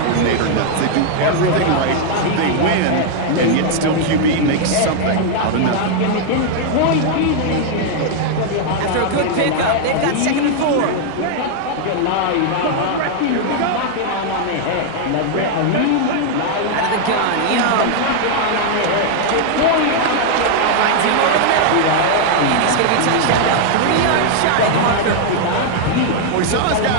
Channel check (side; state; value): both; different; correlation 0.00